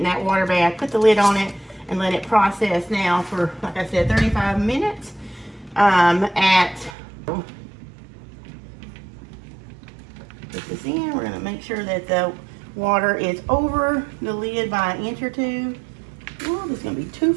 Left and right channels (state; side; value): drops out; left; at 7.0 s